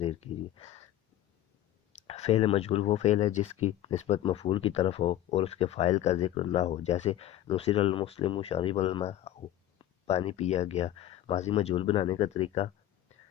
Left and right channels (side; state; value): right; quieter; 12.9 dB